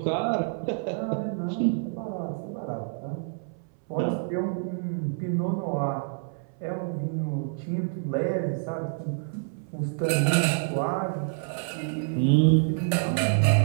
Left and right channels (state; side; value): silent; left; 60 dB below the other